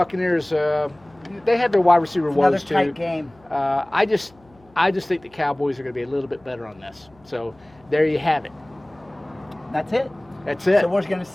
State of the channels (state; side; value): noise; left; hum, 29 dB below the sound